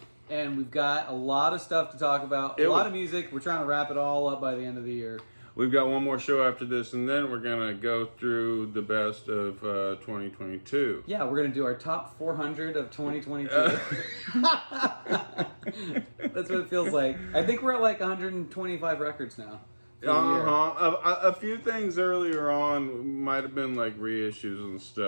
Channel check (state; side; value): inverted; both; correlation -1.00